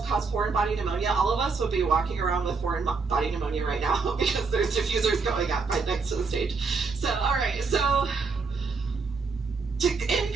cause foreign body pneumonia, all of us would be walking around with foreign body pneumonia right now because there's diffusers going up right next to the stage. So, all right, so in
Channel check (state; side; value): quieter; left; 4.6 dB